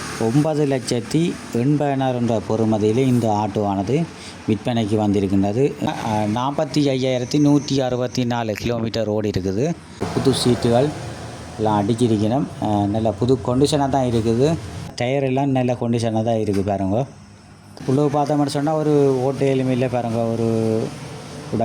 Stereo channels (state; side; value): identical; both; correlation 1.00